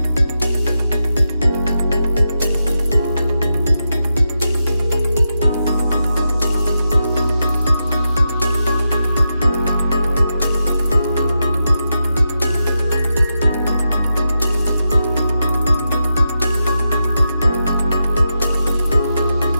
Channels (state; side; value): inverted; both; correlation -0.87